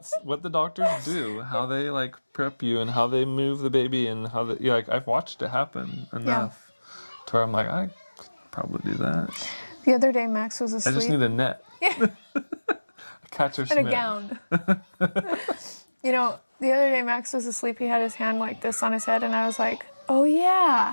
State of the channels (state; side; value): inverted; both; correlation -1.00